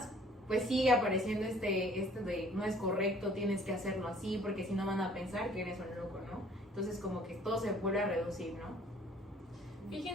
pues sigue apareciendo este de no es correcto, tienes que hacerlo así, porque si no van a pensar que eres un loco, ¿no? Entonces como que todo se vuelve a reducir, ¿no?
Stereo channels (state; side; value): normal; both; correlation 0.56